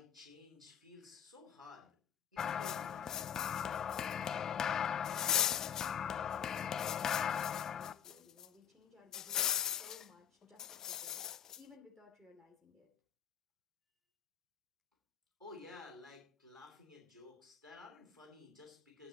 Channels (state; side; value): quieter; right; 8.9 dB